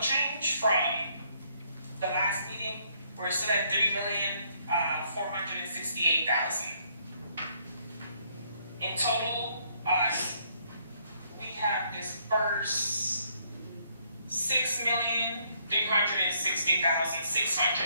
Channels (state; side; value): inverted; both; correlation -0.69